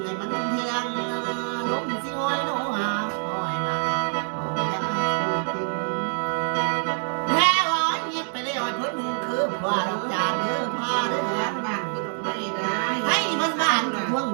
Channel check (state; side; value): silent; left; 61 dB below the other